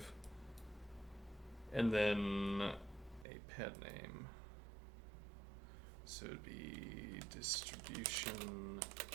and then a pet name, so it'd be distribution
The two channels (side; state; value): left; drops out; at 3.2 s